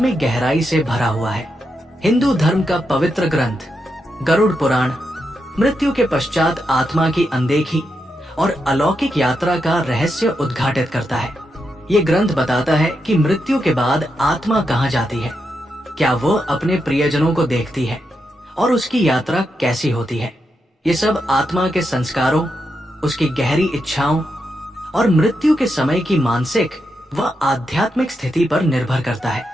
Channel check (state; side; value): normal; both; correlation 0.85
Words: गहराई से भरा हुआ है। हिंदू धर्म का पवित्र ग्रंथ गरुड़ पुराण मृत्यु के पश्चात आत्मा की अनदेखी और अलौकिक यात्रा का रहस्य उद्घाटित करता है। ये ग्रंथ बताता है कि मृत्यु के बाद आत्मा कहाँ जाती है, क्या वो अपने प्रियजनों को देखती है और उसकी यात्रा कैसी होती है। ये सब आत्मा के संस्कारों, उसकी गहरी इच्छाओं और मृत्यु के समय की मानसिक व आध्यात्मिक स्थिति पर निर्भर करता